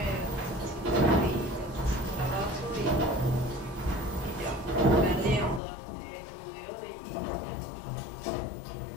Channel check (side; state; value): right; drops out; at 5.6 s